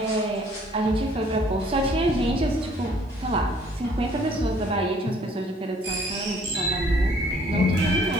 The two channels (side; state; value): both; normal; correlation 0.59